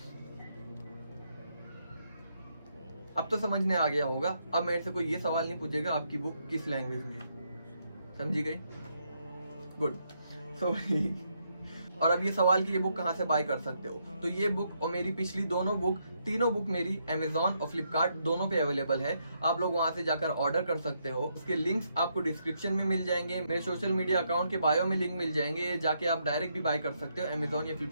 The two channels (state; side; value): inverted; both; correlation -0.77